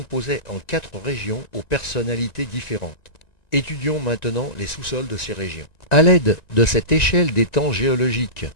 en 4 régions aux personnalités différentes. Étudions maintenant les sous-sols de ces régions. À l'aide de cette échelle des temps géologiques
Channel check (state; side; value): late; right; 1.9 ms